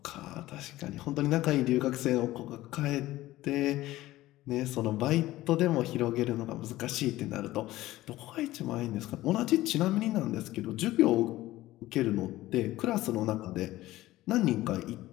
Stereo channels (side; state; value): right; quieter; 16.4 dB